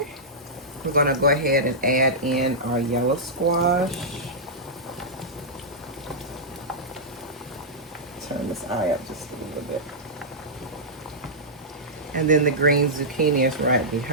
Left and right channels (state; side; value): normal; both; correlation -0.12